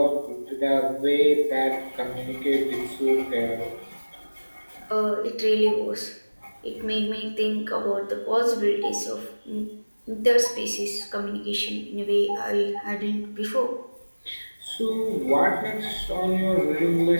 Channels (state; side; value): inverted; both; correlation -1.00